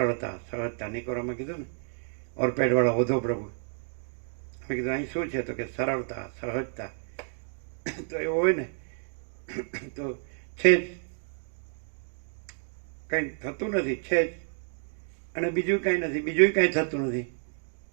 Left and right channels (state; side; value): silent; left; 58 dB below the other